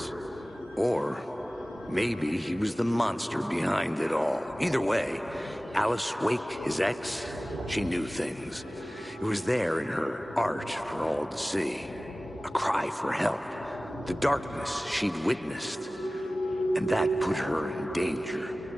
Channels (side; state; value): both; normal; correlation 0.97